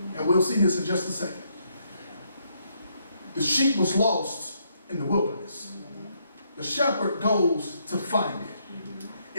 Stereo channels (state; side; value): inverted; both; correlation -0.74